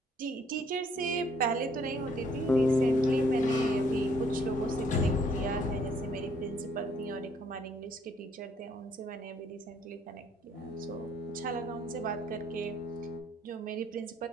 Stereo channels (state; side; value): normal; both; correlation 0.65